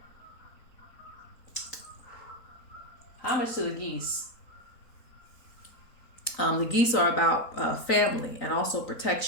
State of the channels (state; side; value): late; right; 3.9 ms